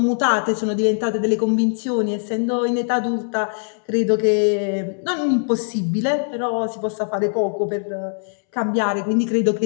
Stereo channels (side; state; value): right; silent; 65 dB below the other